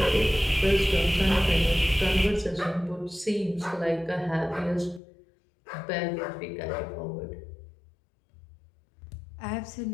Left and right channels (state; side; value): drops out; right; at 5.0 s